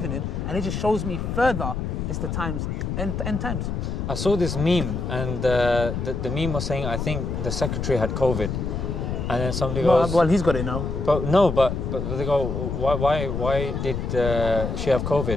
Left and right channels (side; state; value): left; noise; rumble, 3 dB below the sound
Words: in, and it just shows me further it's the times, end times. I saw this meme, and the meme was saying, I think the secretary had COVID. And then somebody goes, well, he's got it now. But they go, why did she have